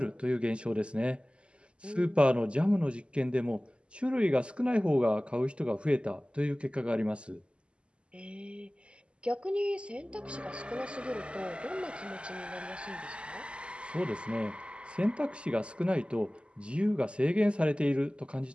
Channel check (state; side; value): late; left; 0.054 ms